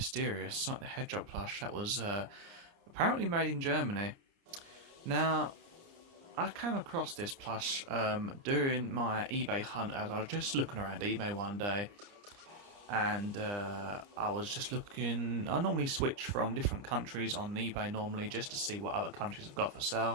Sonic the Hedgehog plush that was apparently made in Germany. Now, I came across this plush during my eBay hunt as I was just looking around eBay one day. And I was just looking. I normally switch from different countries on eBay normally just to see what other countries have got for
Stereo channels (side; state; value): left; late; 30 ms